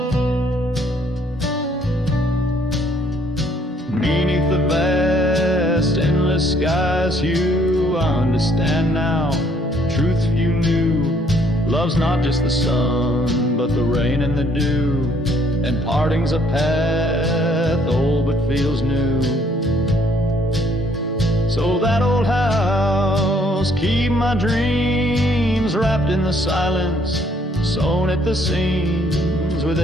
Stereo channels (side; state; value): both; normal; correlation 0.65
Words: Beneath the vast, endless skies hue, I understand now, truth few knew. Love's not just the sun, but the rain and the dew, and parting's a path old but feels new. So that old house, keep my dreams wrapped in the silence, sewn at the seams with